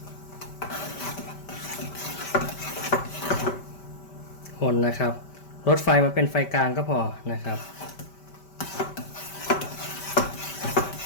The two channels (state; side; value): late; right; 5.1 ms